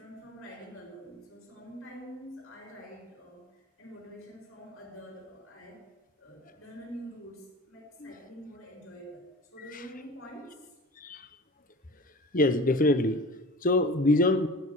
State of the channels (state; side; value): normal; both; correlation 0.38